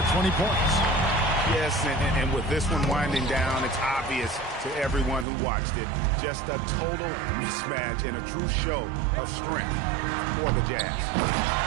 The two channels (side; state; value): left; drops out; at 5.2 s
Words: 20 points. Yes, and with this one winding down, it's obvious to everyone who watched it. Just a total mismatch and a true show of strength for the Jazz.